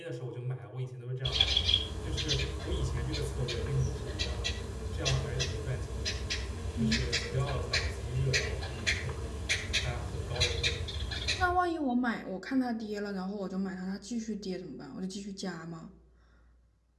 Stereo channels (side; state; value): both; identical; correlation 1.00